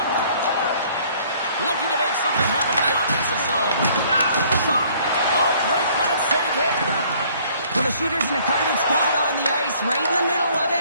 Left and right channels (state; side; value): inverted; both; correlation -0.58